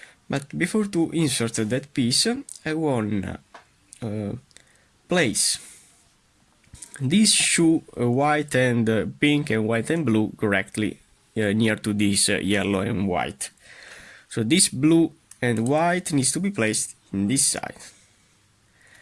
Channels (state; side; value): identical; both; correlation 1.00